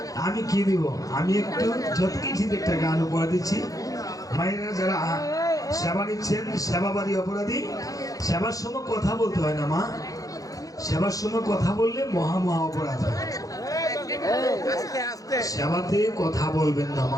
আমি কি দিব? আমি একটু যত কিছু একটা গান উপহার দিচ্ছি। মায়েরা যারা সেবা নিচ্ছেন, সেবাবাদী অপরাধী, সেবার সময় কথা বলতে হয় না মা, সেবার সময় কথা বললে মহা মহা অপরাধ হয়। সেবাতে কথা বলবেন না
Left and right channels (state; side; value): late; right; 0.17 ms